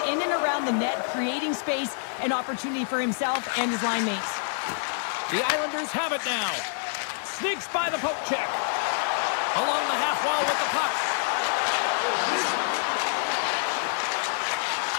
in and around the net, creating space and opportunity for himself and his line mates. The Islanders have it now. Sneaks by the poke check. Along the half wall with the puck.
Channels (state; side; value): silent; right; digital silence